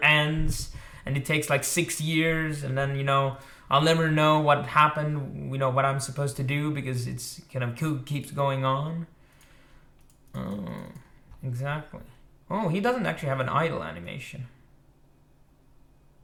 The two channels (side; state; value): both; identical; correlation 1.00